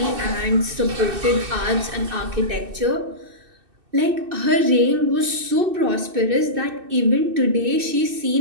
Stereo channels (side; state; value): left; late; 2.6 ms